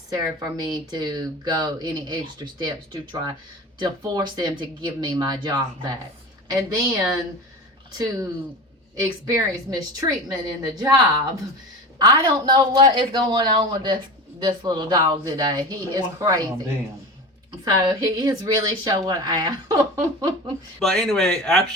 for me to go any extra steps to try to force them to give me my job back. And then to experience mistreatment in the job. I don't know what is going on with this little dog today. He is crazy. So he is really showing out. But anyway, after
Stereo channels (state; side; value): normal; both; correlation 0.31